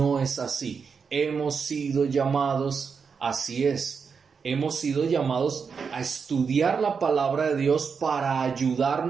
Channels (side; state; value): left; quieter; 5.8 dB